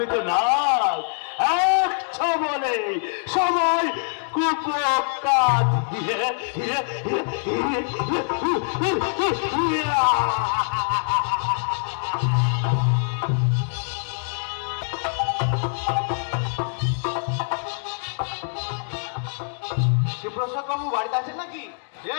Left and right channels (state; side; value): silent; right; 63 dB below the other